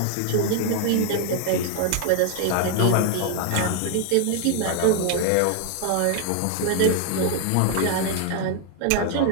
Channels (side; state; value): both; different; correlation 0.00